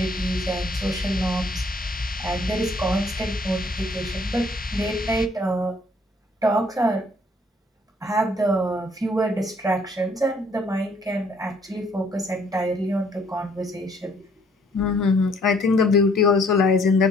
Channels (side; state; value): both; normal; correlation 0.63